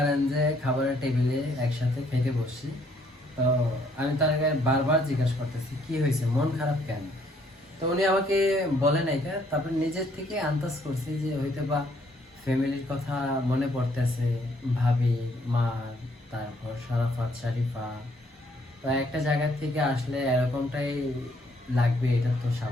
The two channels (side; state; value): both; normal; correlation 0.67